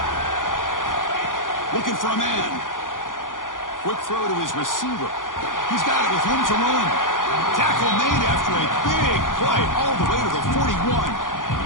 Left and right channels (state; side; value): late; right; 0.89 ms